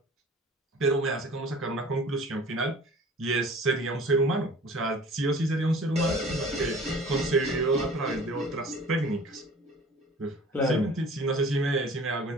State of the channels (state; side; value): normal; both; correlation 0.46